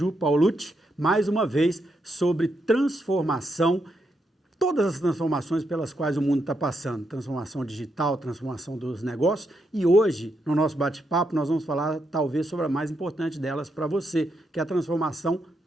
Paulucci, mais uma vez sobre transformação, todas as transformações pelas quais o mundo está passando, transformação digital, transformação dos negócios, e hoje, no nosso bate-papo, nós vamos falar talvez sobre a mais importante delas para você, que é a transformação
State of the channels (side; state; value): both; normal; correlation 0.81